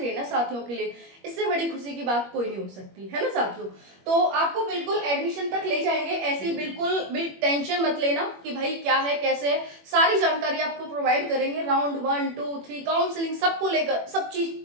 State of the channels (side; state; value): left; late; 21 ms